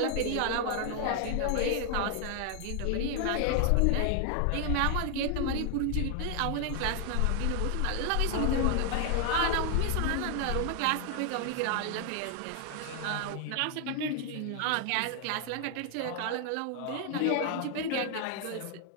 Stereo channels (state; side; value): different; both; correlation 0.00